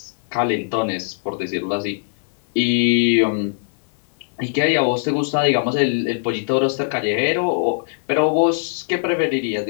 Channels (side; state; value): right; silent; digital silence